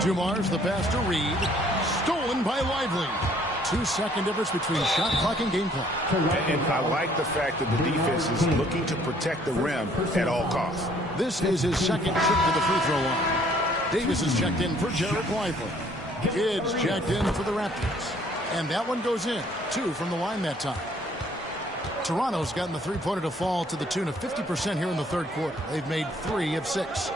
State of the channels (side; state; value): both; normal; correlation 0.61